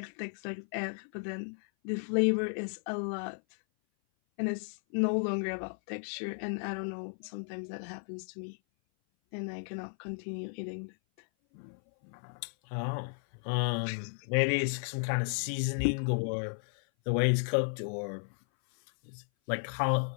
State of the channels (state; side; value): silent; right; 55 dB below the other